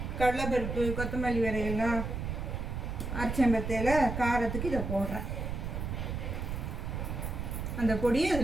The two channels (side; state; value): right; noise; rumble, 4 dB below the sound